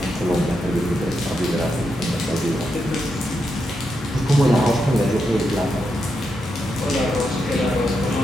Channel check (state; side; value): normal; both; correlation 0.84